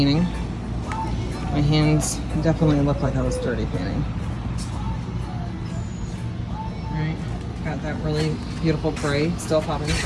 My hands definitely look like I was dirty painting. All right, got that really beautiful gray still popping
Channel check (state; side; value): identical; both; correlation 1.00